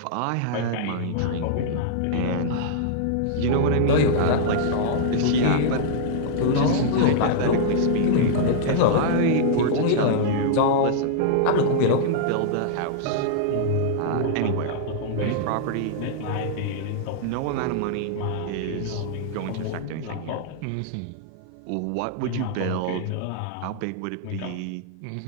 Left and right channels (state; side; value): different; both; correlation -0.01